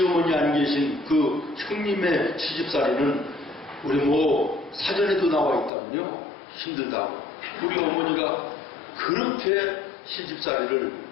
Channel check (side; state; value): right; drops out; at 5.7 s